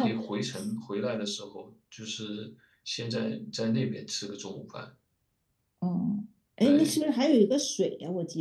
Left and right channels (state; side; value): identical; both; correlation 1.00